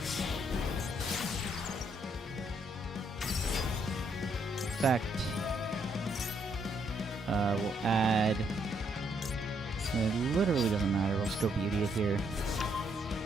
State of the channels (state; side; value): normal; both; correlation 0.73